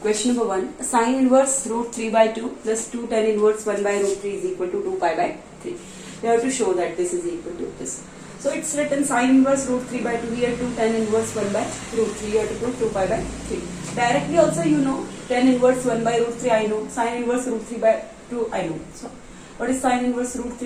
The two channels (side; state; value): both; identical; correlation 1.00